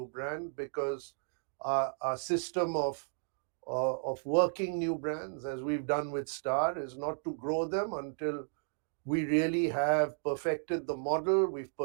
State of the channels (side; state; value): left; silent; digital silence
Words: brand, because our system of working new brands, as we've done with Star, is not to grow them until we really have perfected the model, we've